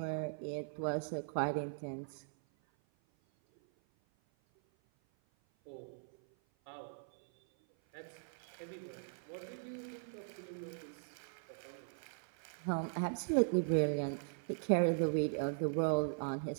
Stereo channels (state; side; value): silent; left; 51 dB below the other